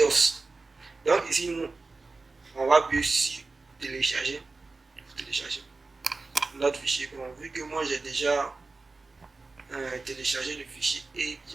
Donc ici, nous, on va appuyer sur télécharger. Notre fichier. Bon, vu que moi j'ai déjà téléchargé le fichier et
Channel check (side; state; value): left; quieter; 3.7 dB